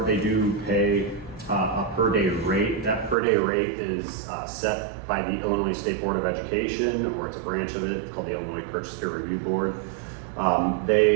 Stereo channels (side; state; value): left; drops out; at 3.2 s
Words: they do pay a per day rate. That per day rate is set by the Illinois State Board of Education, or it's a branch of it called the Illinois Purchase Care Review Board.